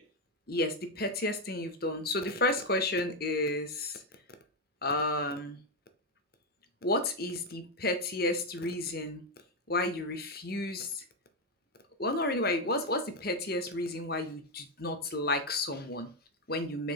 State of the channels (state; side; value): normal; both; correlation 0.06